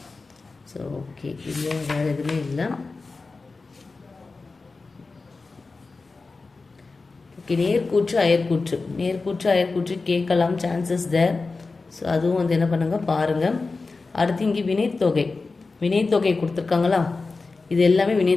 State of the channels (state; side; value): quieter; right; 3.9 dB